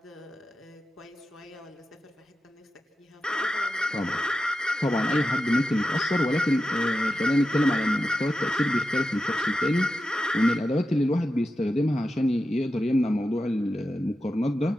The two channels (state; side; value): normal; both; correlation 0.90